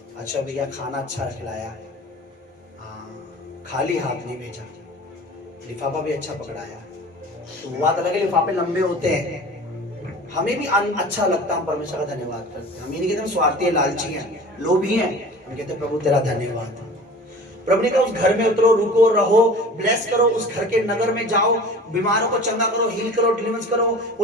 अच्छा भैया खाना अच्छा खिलाया, हाँ, खाली हाथ नहीं भेजा, लिफाफा भी अच्छा पकड़ाया। तो वो बात अलग है, लिफाफे लंबे होते हैं, हमें भी अच्छा लगता है। परमेश्वर का धन्यवाद करते हैं। हम ये नहीं कहते हम स्वार्थी हैं, लालची हैं, लोभी हैं। हम कहते हैं प्रभु तेरा धन्यवाद। प्रभु ने कहा उस घर में उतरो, रुको, रहो, ब्लेस करो, उस घर के नगर में जाओ, बीमारों को चंगा करो, हील करो, डिलीवरेंस करो।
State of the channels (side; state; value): both; normal; correlation 0.41